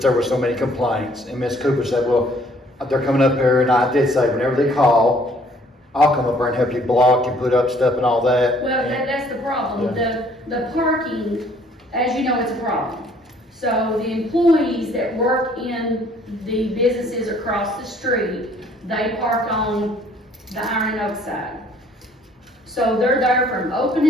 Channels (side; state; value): both; normal; correlation 0.60